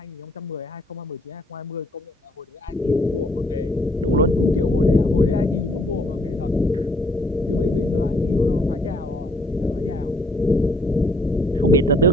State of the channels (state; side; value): normal; both; correlation 0.64